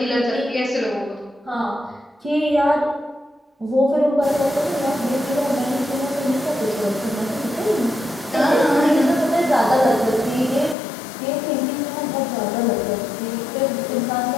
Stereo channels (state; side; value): drops out; right; at 10.8 s